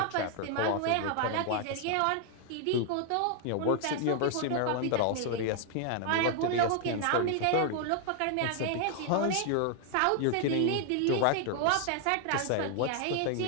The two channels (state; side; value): different; both; correlation 0.00